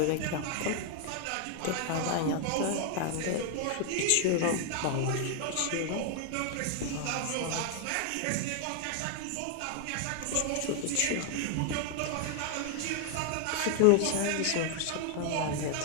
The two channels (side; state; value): both; different; correlation 0.00